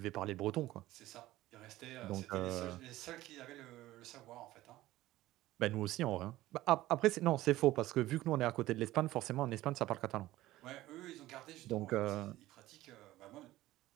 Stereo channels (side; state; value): left; quieter; 16.2 dB